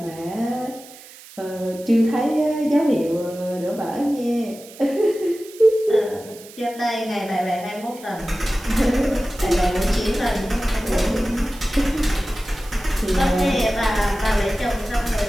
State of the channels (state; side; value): noise; right; hiss, 19 dB below the sound